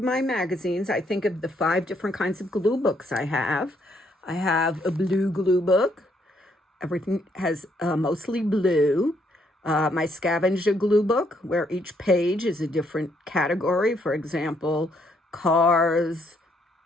magazines, I think of the 5 different kinds of glue books I have. I have a blue glue book. Everything has mostly blue. My scavenger glue book, where each page is a different category. For example, cars,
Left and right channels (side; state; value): both; normal; correlation 0.71